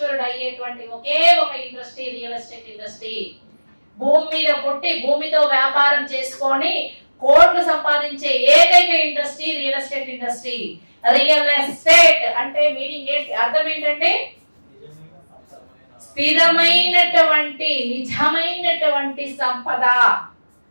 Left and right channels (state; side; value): inverted; both; correlation -1.00